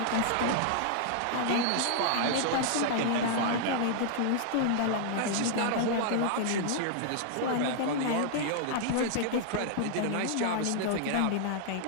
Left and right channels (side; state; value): both; different; correlation -0.01